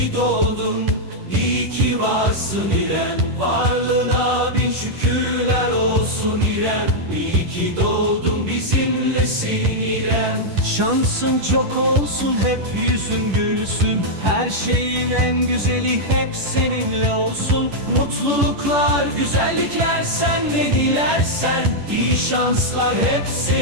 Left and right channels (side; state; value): left; late; 10 ms